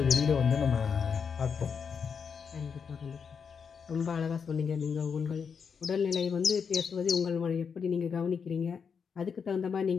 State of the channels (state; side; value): quieter; right; 6.3 dB